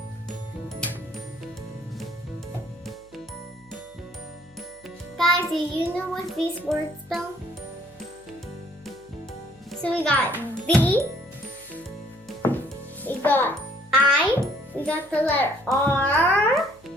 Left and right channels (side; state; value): left; noise; hum, 29 dB below the sound